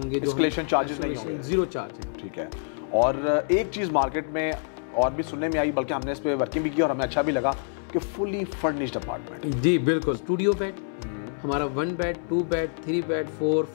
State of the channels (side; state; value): right; silent; 61 dB below the other